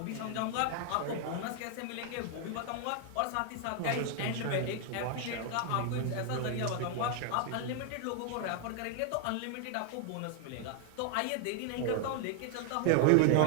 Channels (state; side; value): different; both; correlation 0.00